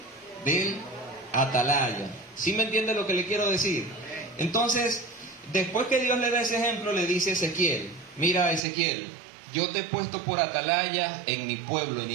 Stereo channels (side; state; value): left; drops out; at 8.6 s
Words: Del atalaya. ¿Sí me entiende lo que le quiero decir? Entonces, después que Dios le da ese ejemplo, le dice a Ezequiel: mira, Ezequiel, yo te he puesto por atalaya en mi pueblo, en